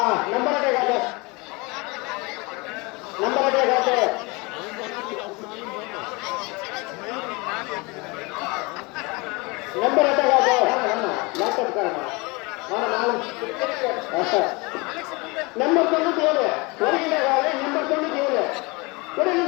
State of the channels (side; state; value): right; quieter; 26.6 dB